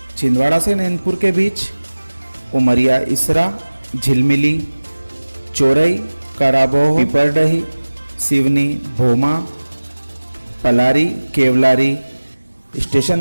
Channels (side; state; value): both; inverted; correlation -1.00